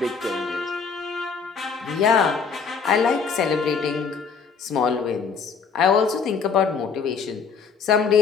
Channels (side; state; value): right; quieter; 5.8 dB